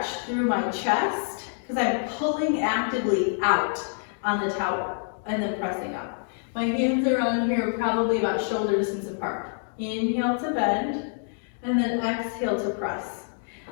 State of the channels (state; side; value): silent; right; digital silence